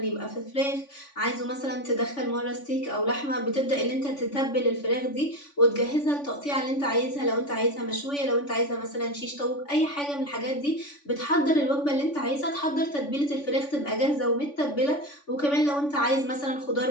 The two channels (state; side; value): late; right; 3.5 ms